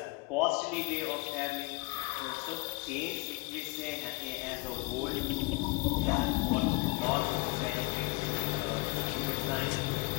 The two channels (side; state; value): right; quieter; 27.1 dB